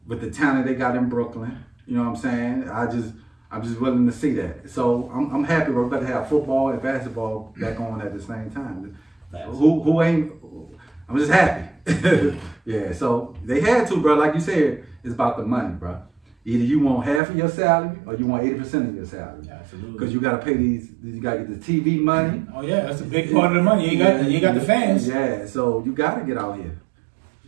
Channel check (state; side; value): drops out; left; at 17.2 s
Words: with the talent they got in Brooklyn. You know what I'm saying? I'm just willing to see that. So I'm happy we're about to have football and basketball back on at the same time. Who ain't? I'm just happy. Yeah. So they had to, bro. Like you said, it's about the money, bro. Either you want half of your salary or you want 80% of your salary. Absolutely. Because you got to pay these. You got to get the TV money. Oh yeah, that's a big part of the money. You got the fans. Yeah. So you got to get out here.